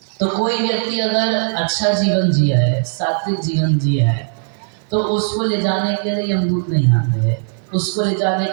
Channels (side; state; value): left; silent; 60 dB below the other